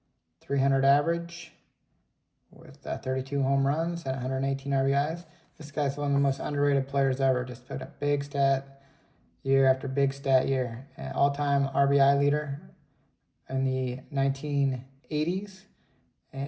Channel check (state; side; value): identical; both; correlation 1.00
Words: 300 average with 32 home runs and 118 RBIs. This guy's one of the most underrated players ever. Just put up big stat year after big stat year. And all-time RBI leader in the 1980s.